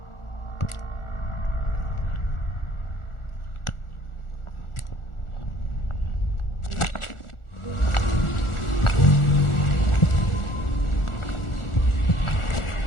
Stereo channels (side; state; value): right; late; 1.4 ms